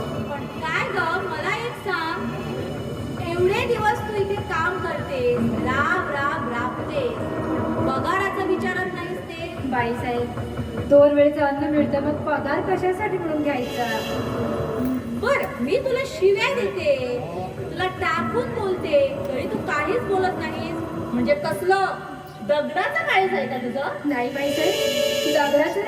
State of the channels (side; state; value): both; identical; correlation 1.00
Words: पण काय ग मला एक सांग एवढे दिवस तू इथे काम करतेस राब राब राबतेस पगाराचं विचारत नाहीस ते बाईसाहेब 2 वेळचं अन्न मिळतं मग पगार कशासाठी म्हणून घ्यायचा बर मी तुला शिव्या देते तुला टाकून बोलते तरी तू काहीच बोलत नाहीस म्हणजे कसलं दगडाचं काळीज आहे का तुझं नाही बाईसाहेब दगडाचं